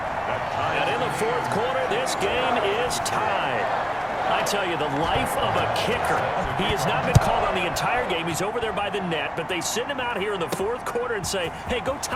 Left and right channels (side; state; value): both; identical; correlation 1.00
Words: in the 4th quarter, this game is tied. I tell you, the life of a kicker. He has not been called on the entire game. He's over there by the net, but they send him out here in the 4th quarter and say, hey, go